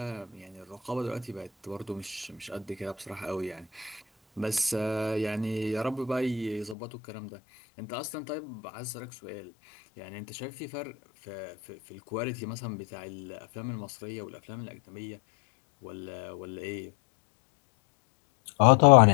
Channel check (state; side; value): drops out; right; at 6.8 s